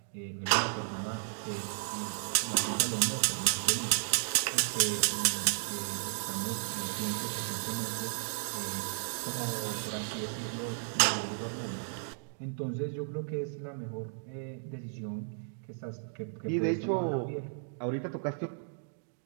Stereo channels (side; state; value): left; silent; digital silence